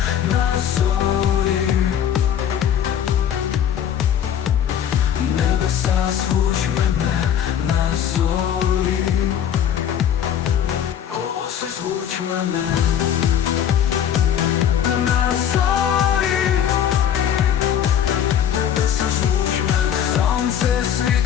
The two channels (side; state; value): right; quieter; 9.4 dB